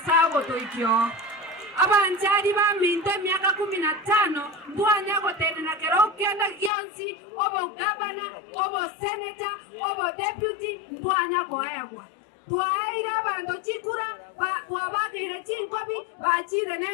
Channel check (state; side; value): drops out; right; at 6.7 s